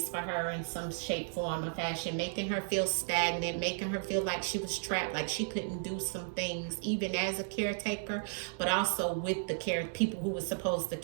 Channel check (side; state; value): left; silent; digital silence